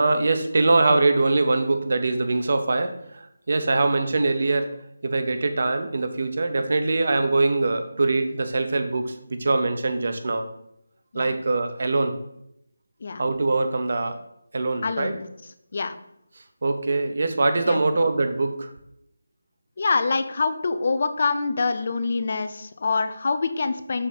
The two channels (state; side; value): inverted; both; correlation -0.92